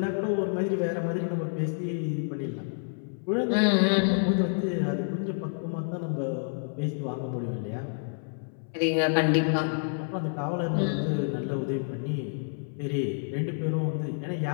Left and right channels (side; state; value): right; silent; 59 dB below the other